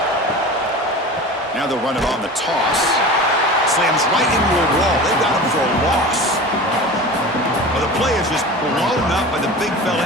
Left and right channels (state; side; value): normal; both; correlation 0.34